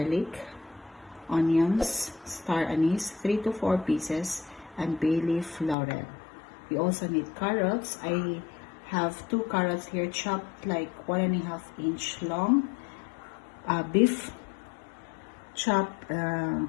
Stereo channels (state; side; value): drops out; right; at 5.8 s